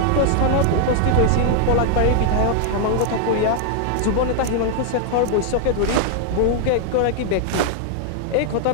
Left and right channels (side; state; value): both; different; correlation 0.00